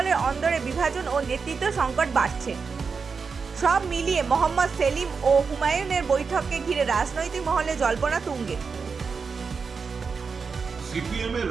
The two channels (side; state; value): left; quieter; 5.2 dB